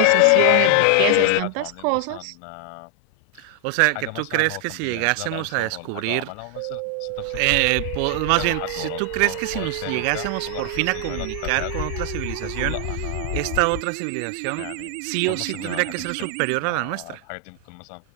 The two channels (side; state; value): both; different; correlation 0.00